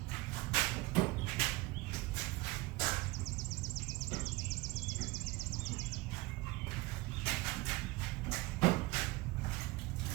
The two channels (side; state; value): left; quieter; 21.7 dB